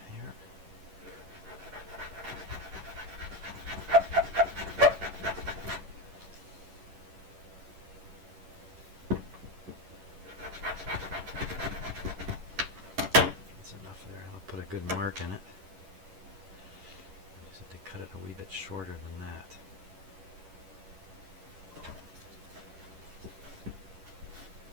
here. Put a good mark in it. I just have to cut it a wee bit shorter than that.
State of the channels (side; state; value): left; late; 11 ms